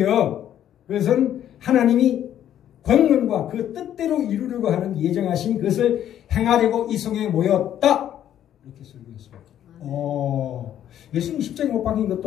그것은 하나님이 권능과 그 뜻대로 이루려고 하는 예정하신 것을 행하려고 이성에 모였다. 이렇게 설교했습니다. 예수님 십자가에 못 박힌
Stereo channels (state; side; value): quieter; right; 10.8 dB